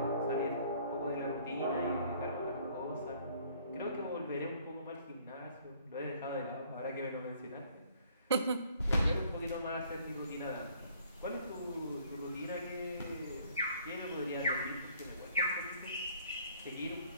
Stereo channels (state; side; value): inverted; both; correlation -0.59